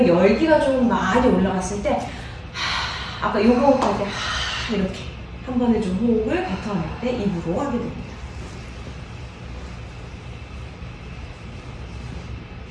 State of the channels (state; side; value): identical; both; correlation 1.00